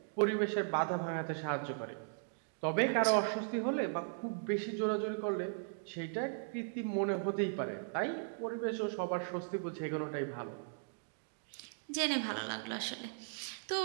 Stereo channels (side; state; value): left; silent; digital silence